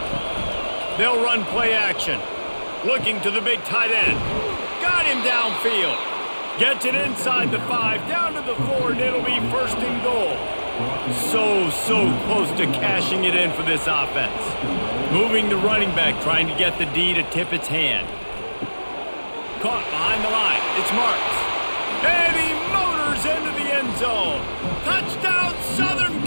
They'll run play action. Looking to the big tight end. Got him downfield. Gets it inside the 5, down to the 4, and it'll be first and goal. So close to cashing it in for this offense. Moving the running back, trying to get the D to tip its hand. Caught behind the line. It's Marks. And he motors into the end zone. Touchdown, Southern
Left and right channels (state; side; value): inverted; both; correlation -1.00